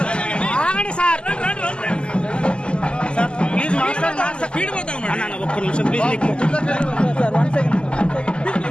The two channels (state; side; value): late; right; 0.050 ms